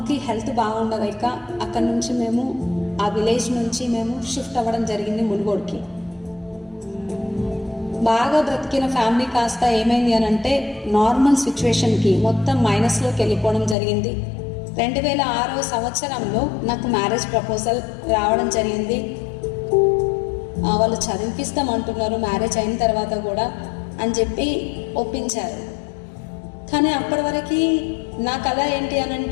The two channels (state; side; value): drops out; right; at 13.8 s